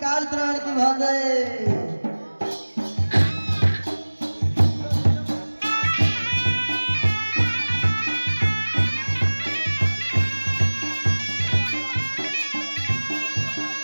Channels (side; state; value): both; inverted; correlation -1.00